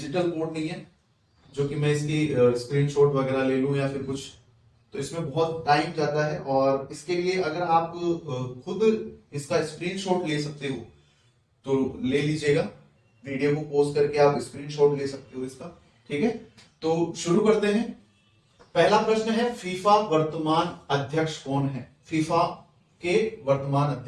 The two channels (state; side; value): identical; both; correlation 1.00